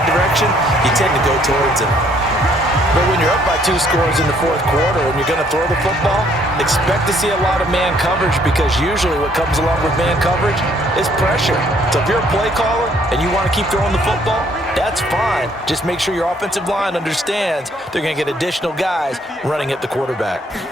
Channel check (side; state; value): both; normal; correlation 0.65